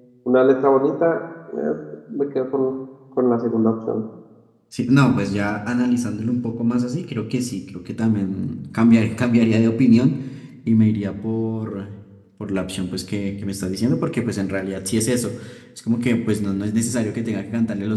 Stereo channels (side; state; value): both; identical; correlation 1.00